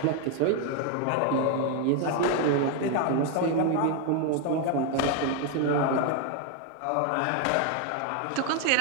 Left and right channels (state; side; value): different; both; correlation 0.01